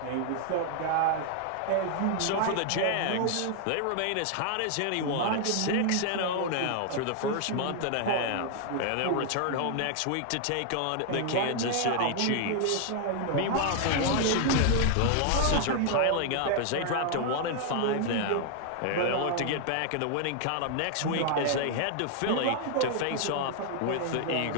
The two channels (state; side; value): different; both; correlation 0.00